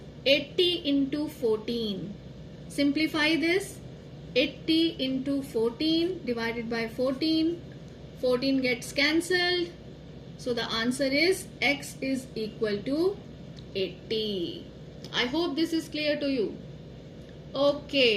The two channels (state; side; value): identical; both; correlation 1.00